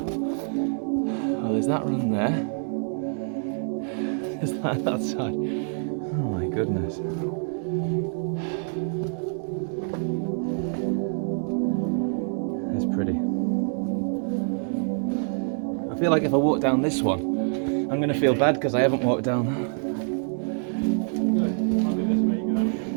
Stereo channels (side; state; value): left; silent; 61 dB below the other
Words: Oh, there's that run there. There's that side. Oh my goodness. That's pretty. I feel like if I walk down this one, I'm going to feel bad because I haven't walked down that.